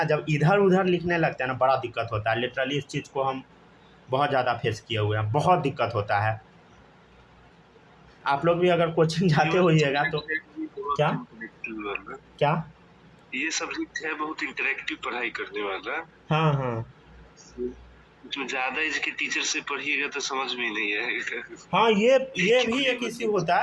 जब इधर उधर लिखने लगते हैं ना, बड़ा दिक्कत होता है। लिटरली इस चीज़ को हम बहुत ज़्यादा फेस किए हुए हैं, बहुत दिक्कत होता है। आप लोग भी अगर कोचिंग जाते होइएगा तो क्या क्या ये सब्जेक्ट है बहुत इंटरेक्टिव पढ़ाई करने वाला। हाँ हाँ, उसमें ज़्यादा एज के टीचर से पढ़िएगा तो समझ में नहीं आएगा। हाँ, ये भी एक इश्यू होता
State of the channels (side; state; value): both; identical; correlation 1.00